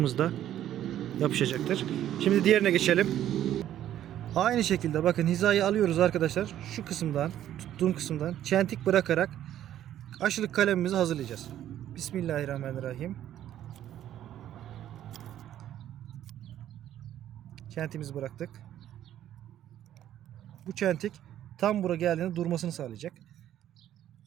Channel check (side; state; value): left; quieter; 11.7 dB